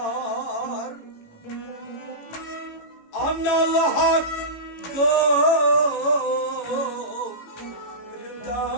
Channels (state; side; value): late; right; 18 ms